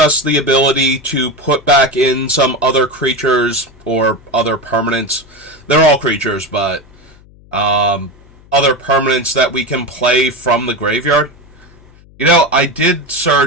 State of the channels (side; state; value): left; noise; hum, 25 dB below the sound